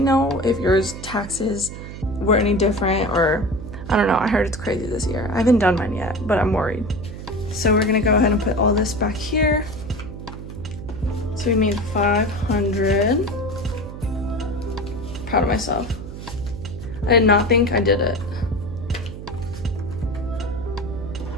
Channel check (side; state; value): right; noise; hum, 11 dB below the sound